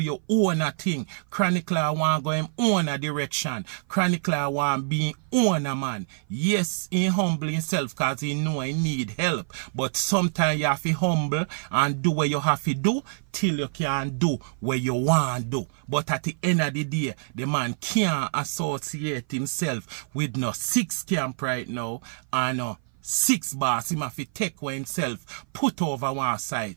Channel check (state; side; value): silent; left; 56 dB below the other